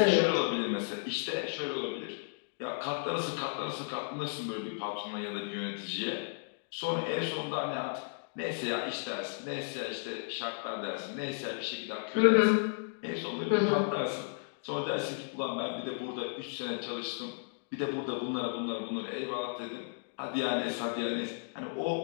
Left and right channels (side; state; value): right; silent; digital silence